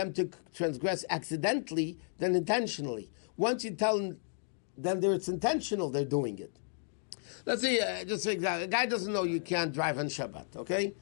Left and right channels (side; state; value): right; silent; digital silence